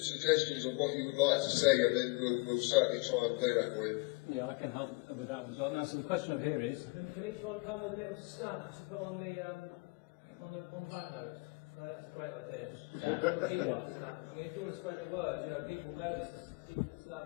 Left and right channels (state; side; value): quieter; right; 27.2 dB